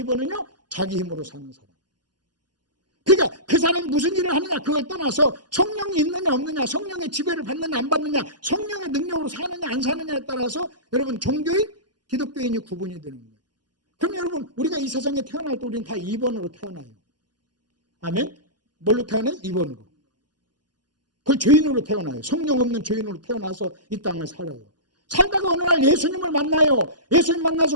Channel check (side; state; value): left; late; 0.70 ms